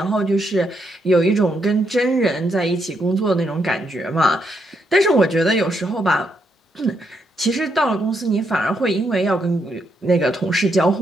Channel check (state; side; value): normal; both; correlation 0.78